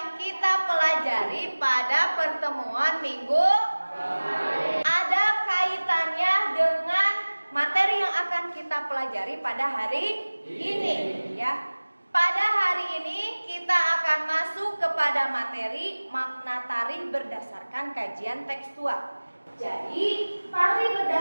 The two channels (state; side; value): inverted; both; correlation -1.00